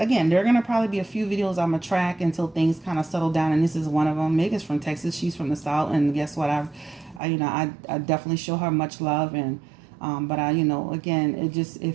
there are going to probably be a few videos I'm going to track until things kind of settle down. And this is one of them. Meg is from Texas. She's from the South. And guess what? I definitely show her much love. And, again, it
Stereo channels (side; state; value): left; drops out; at 7.2 s